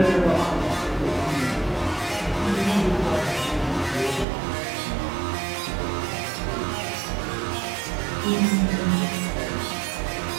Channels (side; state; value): left; drops out; at 4.2 s